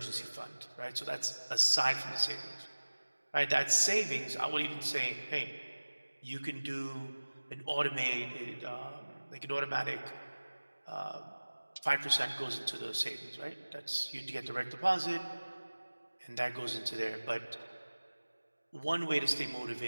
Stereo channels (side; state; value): both; inverted; correlation -1.00